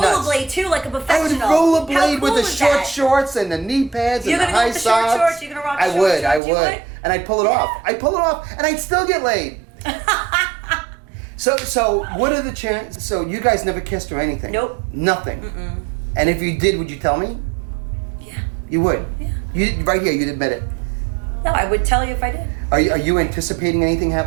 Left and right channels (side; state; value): left; drops out; at 6.4 s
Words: too, like a professional. I would rollerblade with the short shorts and the knee pads and the high socks. You're gonna go with the short shorts. You're gonna rock the short shorts. I would, and I'd pull it off. I'd pull it off, and I'd still get laid. So what are the chances? So you guys never kissed or anything? Nope. Nothing. And if you did, would you tell me? Yeah. You would. Yeah. You right here. You'd admit it. No, I would tell you if I did. Are you anticipating anything